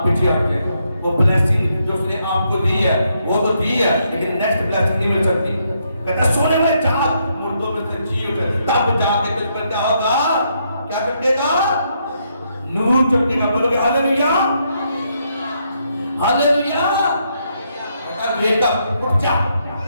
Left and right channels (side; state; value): both; inverted; correlation -0.76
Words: پیچھے ہٹ جائے گا۔ وہ بلیسنگ جو اس نے آپ کو دی ہے وہ تو دی ہے، لیکن نیکسٹ بلیسنگ نہیں مل سکتی۔ کہتا ہے سونے میں جاگ، مردوں میں سے جی اٹھے، تب جا کے تجھ پر کیا ہوگا، کیا چمکے گا، نور چمکے گا۔ بولو گے ہاللیلویا، ہاللیلویا۔ ویک اپ، اٹھ جا،